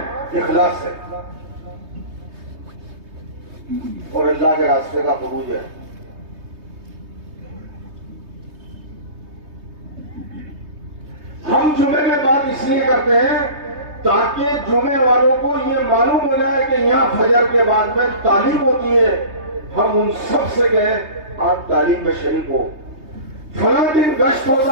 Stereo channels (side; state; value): left; late; 3.2 ms